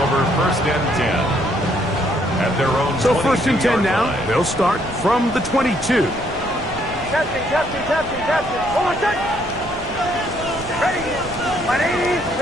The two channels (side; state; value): right; noise; rumble, 15 dB below the sound